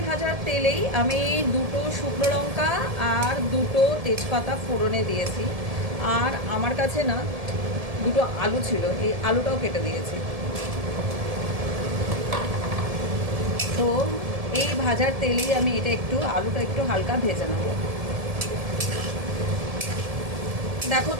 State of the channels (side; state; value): left; late; 1.7 ms